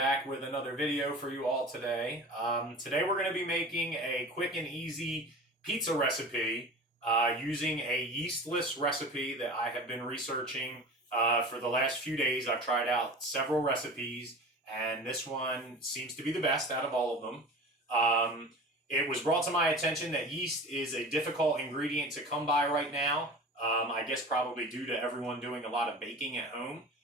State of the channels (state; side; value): normal; both; correlation 0.36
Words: with another video for you all today. Today we're going to be making a quick and easy pizza recipe using a yeastless recipe that I have been researching for the last few days. I've tried out several recipes, and this one seems to be the best out of all of them. It was brought to my attention that yeast is a difficult ingredient to come by right now. I guess probably due to everyone doing a lot of baking at home.